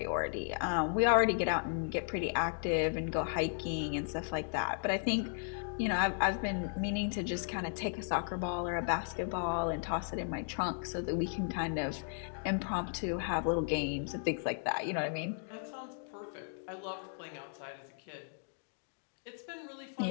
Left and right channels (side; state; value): right; silent; digital silence